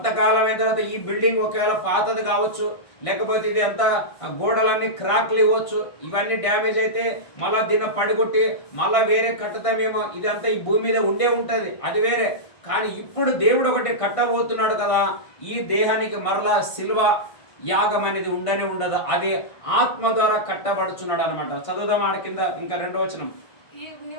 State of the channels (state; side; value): late; right; 1.5 ms